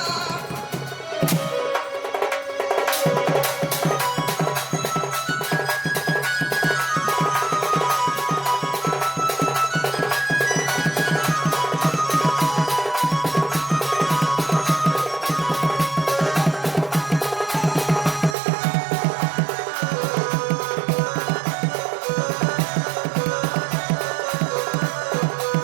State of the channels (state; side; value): drops out; left; at 18.4 s